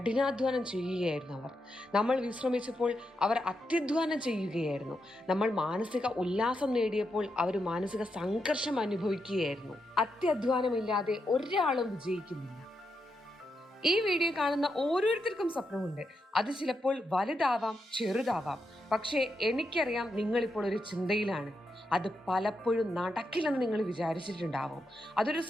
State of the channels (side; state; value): both; normal; correlation 0.84